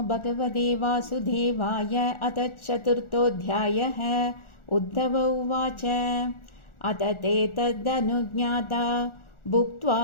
भगवते वासुदेवाय। अथ चतुर्थोऽध्यायः। उद्धव उवाच अथ ते तदनुज्ञाता भुक्त्वा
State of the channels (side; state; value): right; late; 1.4 ms